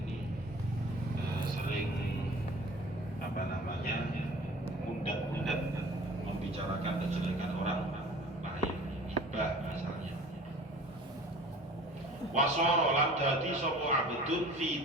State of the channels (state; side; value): normal; both; correlation 0.44